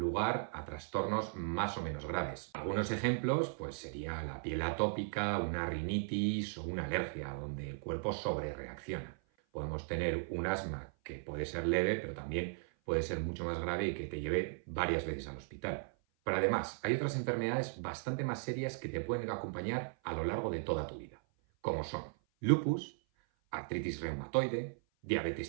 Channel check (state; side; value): silent; left; 53 dB below the other